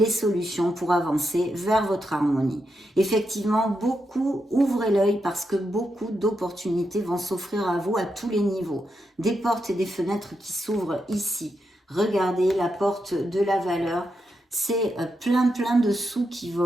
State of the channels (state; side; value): normal; both; correlation 0.84